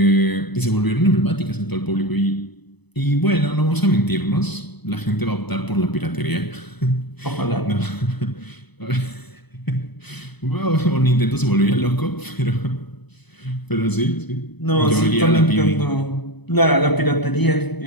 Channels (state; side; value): late; right; 0.99 ms